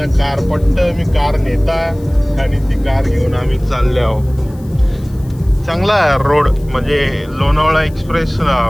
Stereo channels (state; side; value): noise; left; hiss, 27 dB below the sound